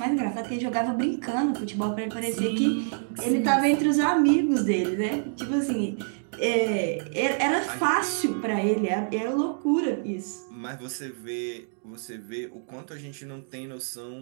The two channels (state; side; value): silent; left; digital silence